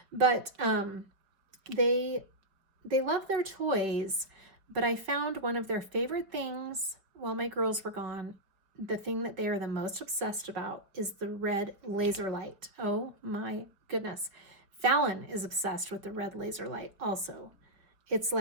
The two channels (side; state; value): left; late; 5.2 ms